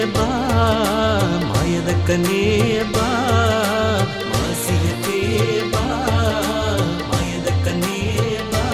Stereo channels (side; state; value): both; identical; correlation 1.00